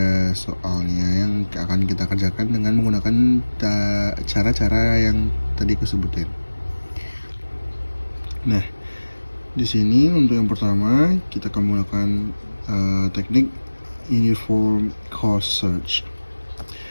soalnya yang akan kita kerjakan dengan menggunakan cara-cara yang tadi aku sebutin. Nah, di sini untuk yang pertama kita akan menggunakan teknik Uniform Cost Search.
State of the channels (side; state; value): both; inverted; correlation -1.00